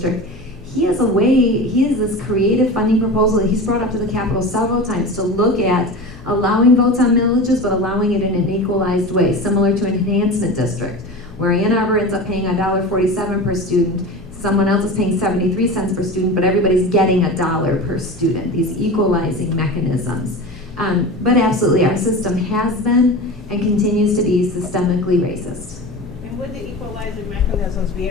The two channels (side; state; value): both; normal; correlation 0.30